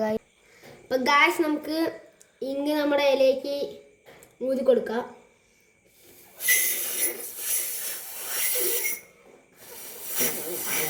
ഗായ്സ്. അപ്പം ഗായ്സ് നമുക്ക് ഇങ്ങ് നമ്മുടെ ഇലയ്ക്ക് ഊതി കൊടുക്കാം.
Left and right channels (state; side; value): identical; both; correlation 1.00